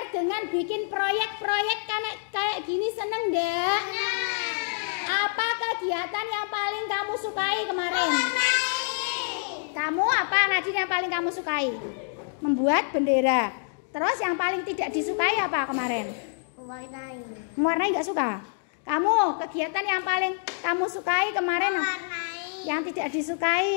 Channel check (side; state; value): right; silent; digital silence